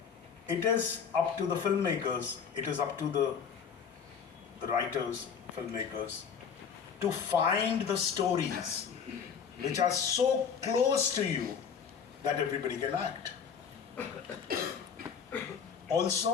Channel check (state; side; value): quieter; right; 6.9 dB